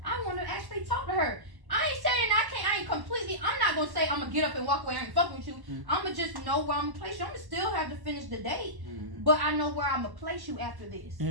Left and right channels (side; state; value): left; late; 1.1 ms